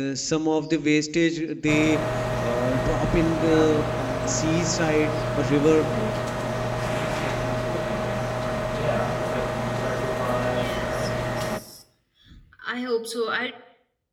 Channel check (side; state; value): both; identical; correlation 1.00